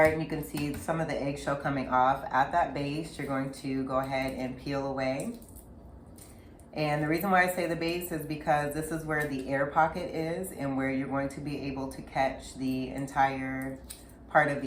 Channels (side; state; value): both; identical; correlation 1.00